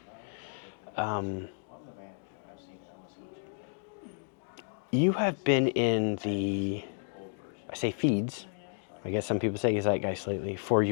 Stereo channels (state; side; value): silent; right; digital silence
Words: You have been in the, I say feeds, I guess some people say zeitgeist lately, for